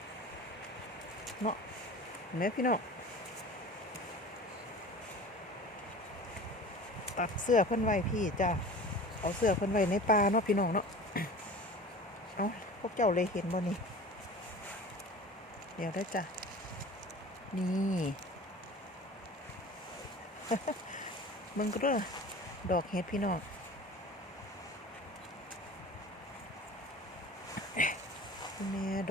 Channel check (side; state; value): both; normal; correlation 0.38